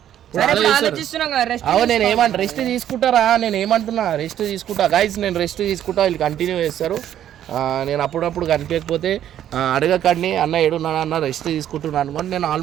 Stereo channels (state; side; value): quieter; left; 11.0 dB